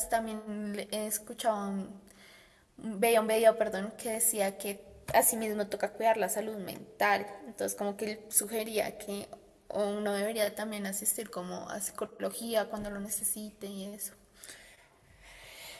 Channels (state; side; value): identical; both; correlation 1.00